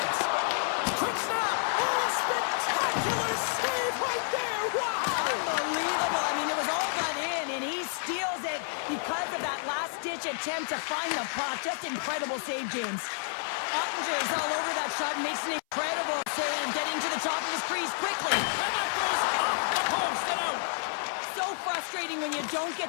Quick snap! Oh, spectacular save right there! Wow! Unbelievable. I mean, it was all done in, and he steals it because of that last-ditch attempt to find the puck. Just incredible save, James. Ottinger is all over that shot and makes an incredible save, getting to the top of his crease quickly. And that goes off the post and out. So frustrating when you don't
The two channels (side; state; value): right; silent; 57 dB below the other